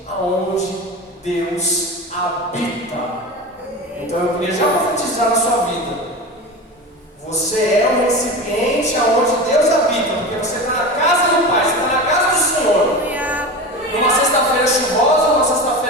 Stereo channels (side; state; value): both; normal; correlation 0.27